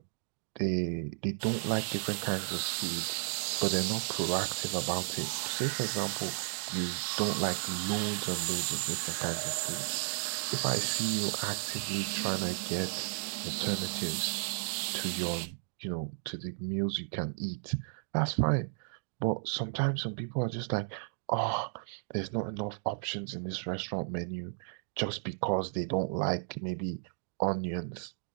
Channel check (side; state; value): left; silent; digital silence